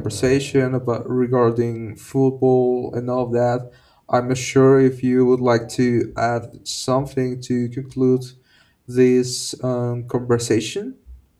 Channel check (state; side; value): identical; both; correlation 1.00